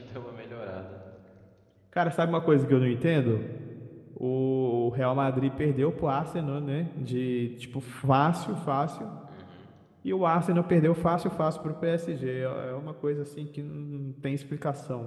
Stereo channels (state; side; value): identical; both; correlation 1.00